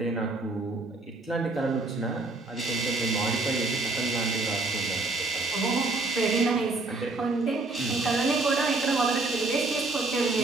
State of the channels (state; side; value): quieter; left; 3.3 dB